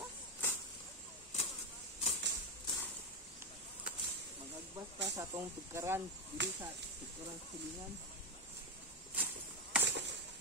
Maghagbas ta sa itong tugkaran. Dili sa tugkaran sa silingan.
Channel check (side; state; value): both; normal; correlation 0.08